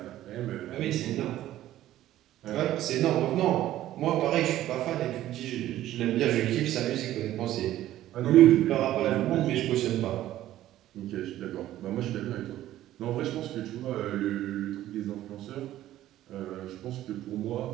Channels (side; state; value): left; quieter; 13.7 dB